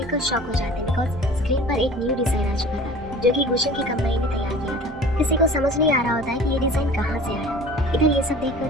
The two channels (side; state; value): both; normal; correlation 0.43